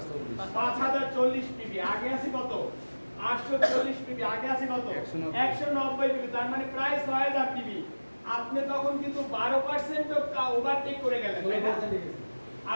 5040 পিবি। আগে আছে কত 840 পিবি, আগে আছে কত 190 পিবি, তার মানে প্রায় 6000 পিবি। আপনি তখন কিন্তু 12% ওভারটেক করে গেলেন, তাই না?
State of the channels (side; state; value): both; inverted; correlation -1.00